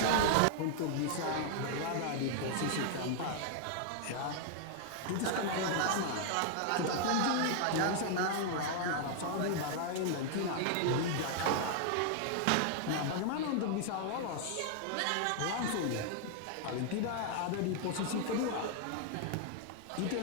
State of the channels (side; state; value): both; different; correlation 0.00